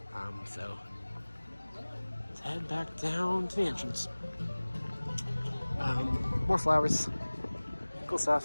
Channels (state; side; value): inverted; both; correlation -1.00